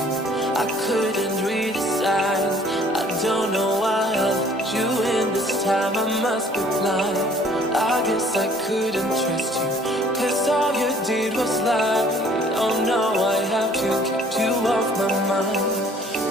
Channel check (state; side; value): normal; both; correlation 0.57